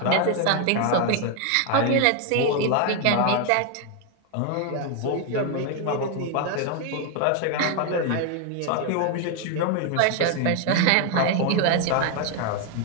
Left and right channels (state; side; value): different; both; correlation 0.01